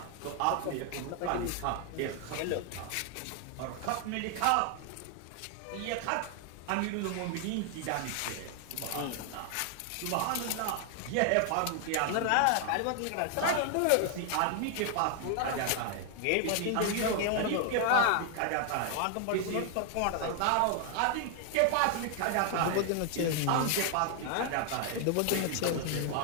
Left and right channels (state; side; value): different; both; correlation 0.00